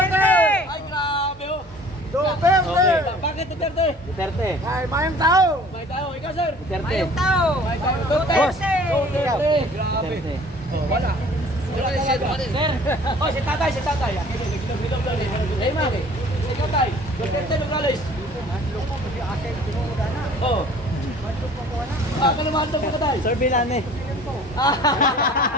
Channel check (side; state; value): both; normal; correlation 0.50